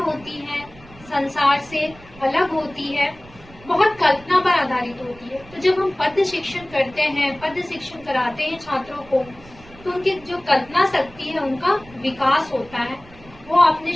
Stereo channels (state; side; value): noise; right; rumble, 21 dB below the sound